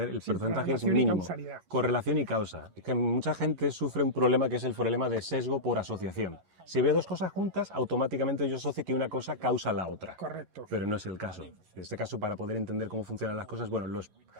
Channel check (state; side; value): late; left; 11 ms